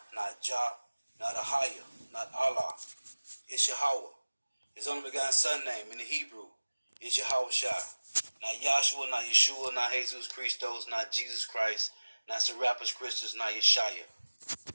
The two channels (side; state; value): both; inverted; correlation -1.00